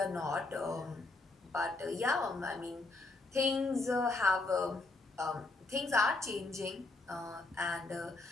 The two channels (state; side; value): quieter; right; 3.3 dB